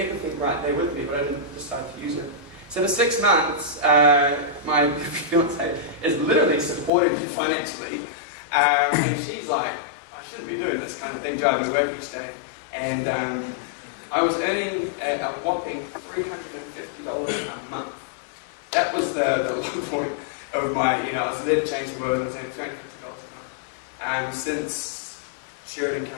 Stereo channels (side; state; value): right; drops out; at 6.9 s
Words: right there with me, but I didn't decide to use it. So for 6 months, my fiance is literally supporting me financially. And she's like, I shouldn't be doing this kind of thing, driving to work each day. And I was earning a whopping $350 a month. That was the low point of my, I was there to change the world, and I was earning $350 a month. Since Sheridan